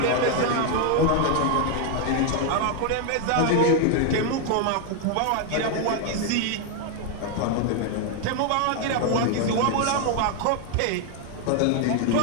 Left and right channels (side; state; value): both; different; correlation 0.01